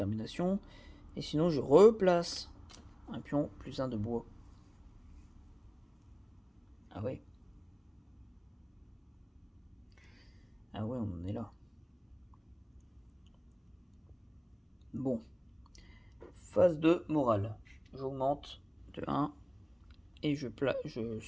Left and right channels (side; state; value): both; identical; correlation 1.00